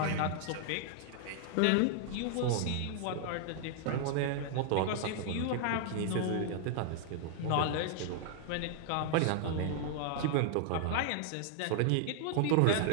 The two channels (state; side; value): different; both; correlation -0.01